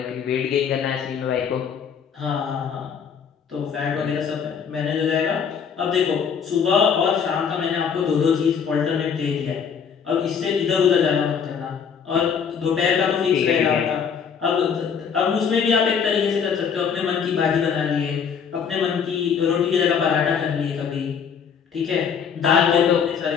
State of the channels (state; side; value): quieter; right; 6.9 dB